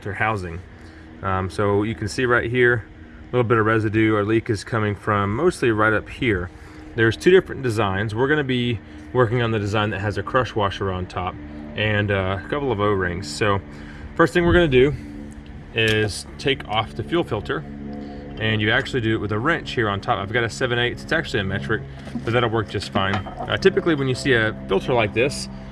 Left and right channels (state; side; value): identical; both; correlation 1.00